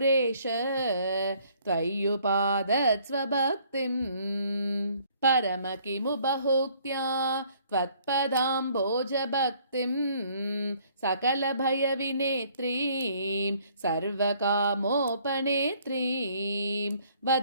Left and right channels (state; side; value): inverted; both; correlation -0.62